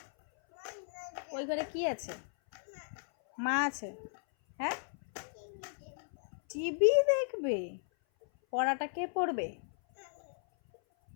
ওই ঘরে কি আছে? মা আছে। হ্যাঁ, টিভি দেখবে। পড়াটা কে পড়বে?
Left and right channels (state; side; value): silent; right; 54 dB below the other